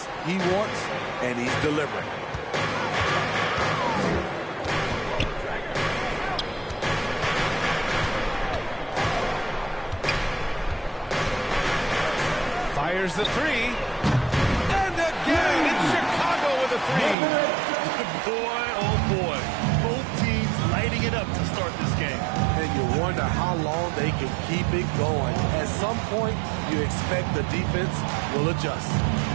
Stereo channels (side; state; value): left; drops out; at 17.2 s